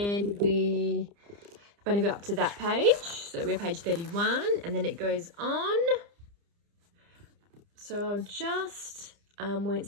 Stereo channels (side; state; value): left; late; 30 ms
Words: we've only got up to that page. So we're page 31, and then it goes on. So I'll just, won't